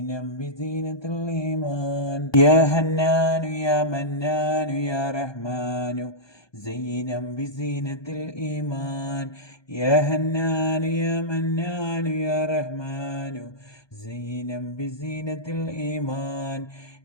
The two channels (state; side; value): late; right; 1.2 ms